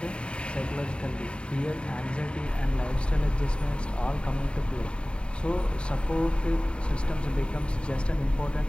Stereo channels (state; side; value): late; right; 0.054 ms